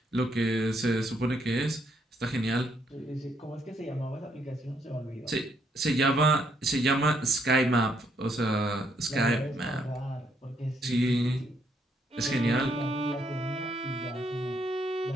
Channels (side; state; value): both; normal; correlation 0.72